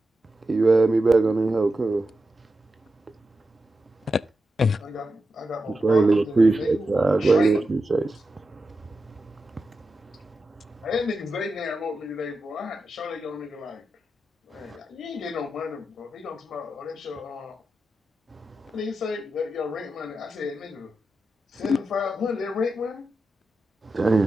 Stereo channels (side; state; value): both; normal; correlation 0.90